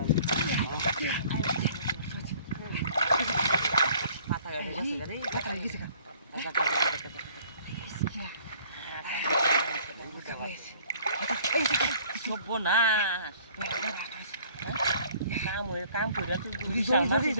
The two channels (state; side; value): inverted; both; correlation -0.55